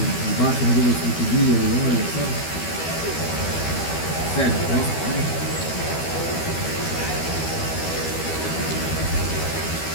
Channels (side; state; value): right; late; 12 ms